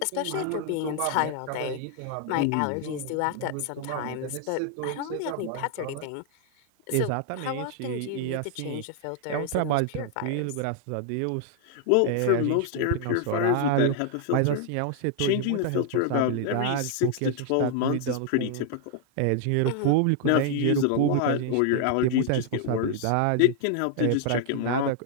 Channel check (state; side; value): different; both; correlation 0.00